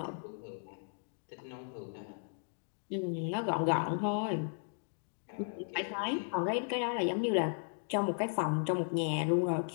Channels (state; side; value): silent; right; digital silence